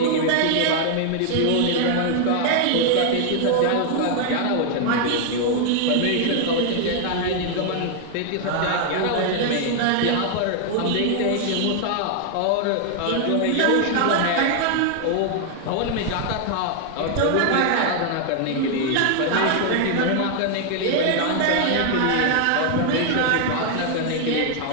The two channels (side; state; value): both; different; correlation 0.00